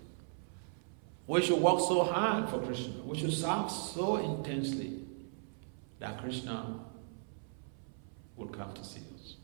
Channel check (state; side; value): silent; left; 53 dB below the other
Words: We should work so hard for Krishna. We should serve so intensely that Krishna will come to see us.